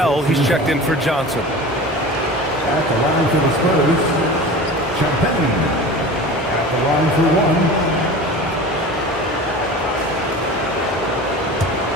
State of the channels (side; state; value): both; normal; correlation 0.35